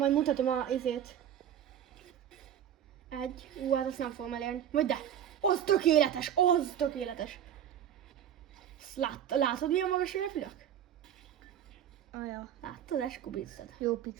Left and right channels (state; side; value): quieter; left; 9.8 dB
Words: mutatom a izét. Hát azt nem fogom elérni. Vagy de! Az tökéletes! Az tökéletes! Látod milyen magas repülök? Aja. Láttad, eskubíztad. Jó